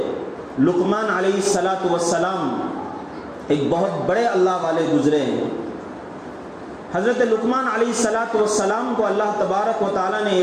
لقمان علیہ الصلاۃ والسلام ایک بہت بڑے اللہ والے گزرے ہیں۔ حضرت لقمان علیہ الصلاۃ والسلام کو اللہ تبارک و تعالیٰ نے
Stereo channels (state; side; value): identical; both; correlation 1.00